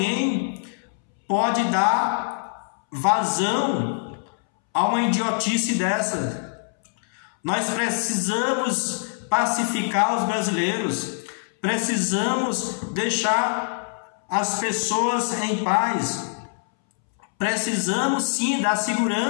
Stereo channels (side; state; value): right; silent; 62 dB below the other